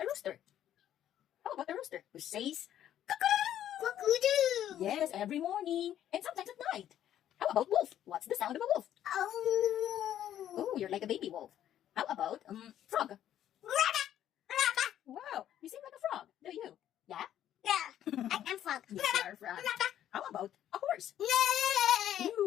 rooster? How about a rooster who says, Cock-a-doo. yes, every morning and sometimes at night? How about wolf? What's the sound of a wolf? Oh. Oh, you're like a baby wolf. How about frog? Raka, raka. Wow, you seem like a frog, do you? Yeah? Yeah. I am frog. Yes, you're a frog. How about a horse? Yay.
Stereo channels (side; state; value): right; quieter; 11.2 dB